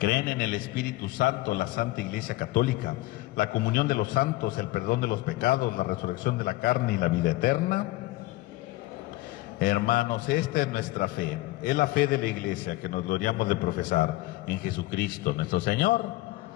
en el Espíritu Santo, la Santa Iglesia Católica, la comunión de los santos, el perdón de los pecados, la resurrección de la carne y la vida eterna? Hermanos, esta es nuestra fe, es la fe de la Iglesia que nos gloriamos de profesar en Jesucristo nuestro Señor.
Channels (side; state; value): right; quieter; 19.1 dB